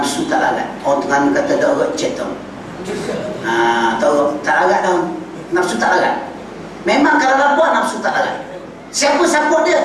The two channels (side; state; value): both; identical; correlation 1.00